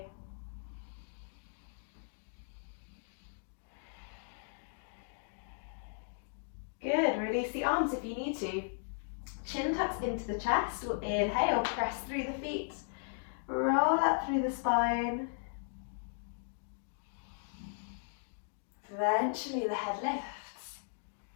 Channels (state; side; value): silent; right; digital silence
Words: Good, release the arms if you need to. Chin tucks into the chest. We'll inhale, press through the feet. Roll up through the spine. Eventually the head lifts.